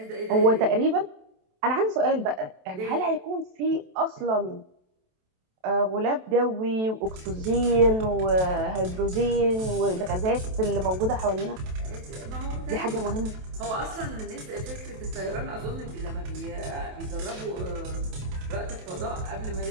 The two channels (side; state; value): left; late; 27 ms